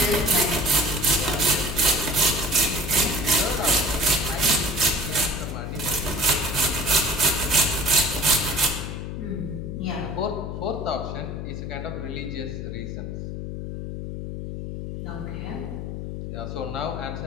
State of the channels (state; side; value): noise; left; hum, 6 dB below the sound